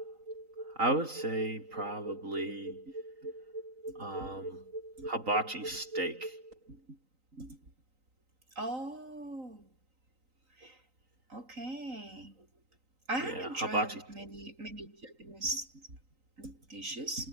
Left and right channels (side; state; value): left; late; 3.9 ms